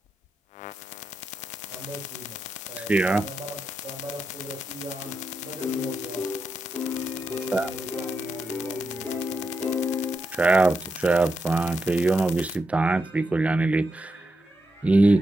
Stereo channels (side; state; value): both; normal; correlation 0.85